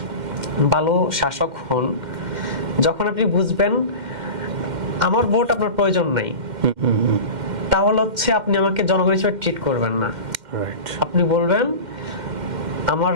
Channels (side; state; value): left; late; 2.1 ms